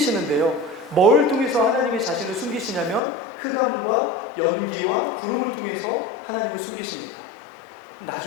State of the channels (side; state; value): right; drops out; at 3.0 s